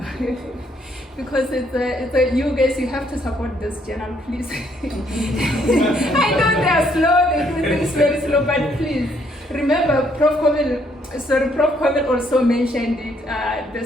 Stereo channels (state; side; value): normal; both; correlation 0.69